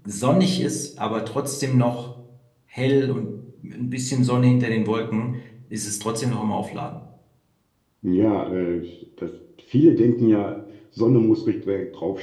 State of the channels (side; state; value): both; identical; correlation 1.00